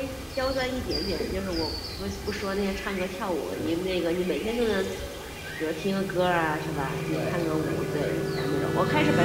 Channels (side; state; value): both; identical; correlation 1.00